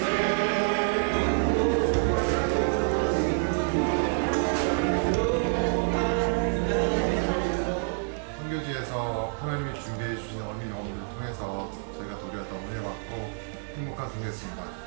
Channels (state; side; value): silent; left; 60 dB below the other